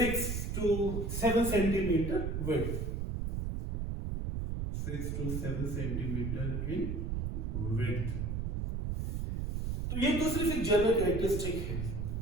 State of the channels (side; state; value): right; noise; rumble, 2 dB below the sound